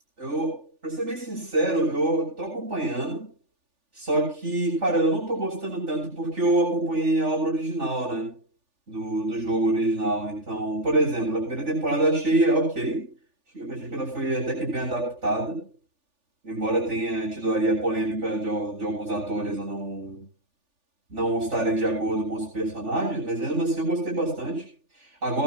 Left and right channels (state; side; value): late; left; 3.4 ms